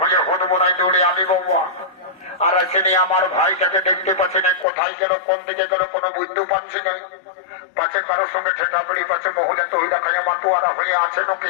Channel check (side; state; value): right; drops out; at 4.7 s